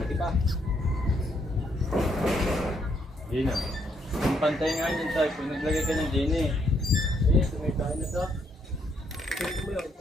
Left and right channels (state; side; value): normal; both; correlation 0.73